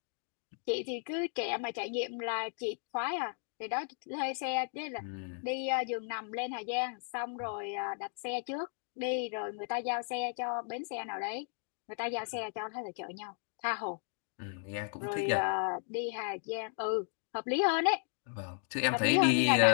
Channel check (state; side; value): silent; right; 55 dB below the other